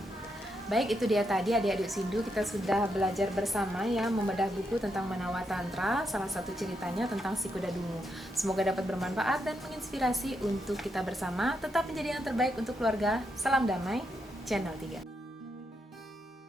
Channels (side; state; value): both; normal; correlation 0.81